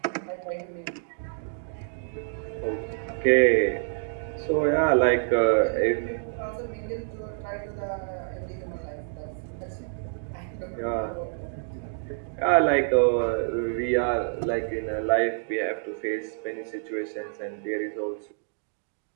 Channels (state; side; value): silent; left; digital silence